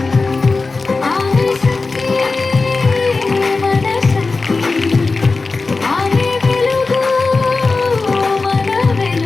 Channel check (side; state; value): right; quieter; 3.9 dB